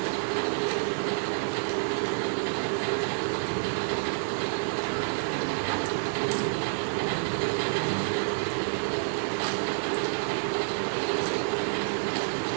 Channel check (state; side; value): silent; left; digital silence